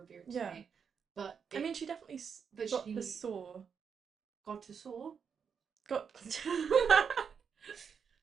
yeah. today. But I mean, she definitely but got the she saw. got to soar. Got.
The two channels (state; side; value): quieter; left; 6.7 dB